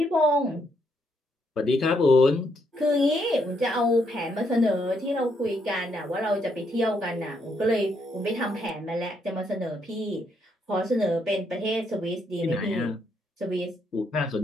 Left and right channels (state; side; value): normal; both; correlation 0.75